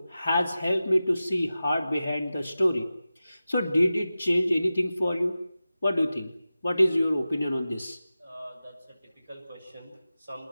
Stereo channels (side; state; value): both; inverted; correlation -0.94